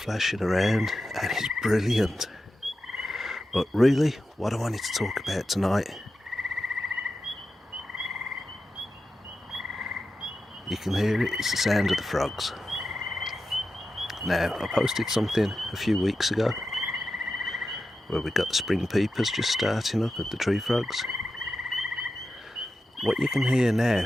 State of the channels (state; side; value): normal; both; correlation 0.91